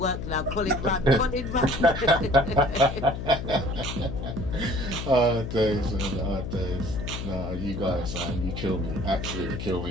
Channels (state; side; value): noise; left; hum, 6 dB below the sound